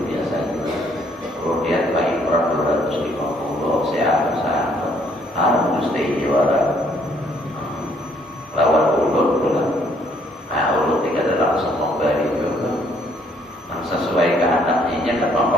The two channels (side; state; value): both; normal; correlation 0.66